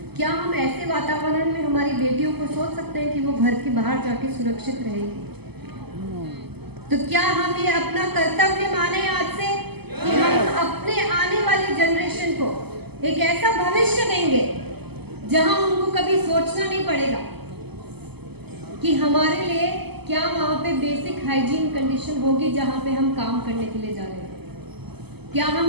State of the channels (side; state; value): left; late; 0.97 ms